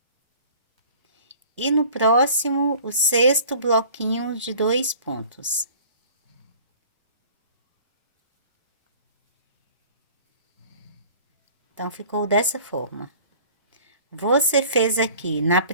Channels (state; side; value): inverted; both; correlation -0.48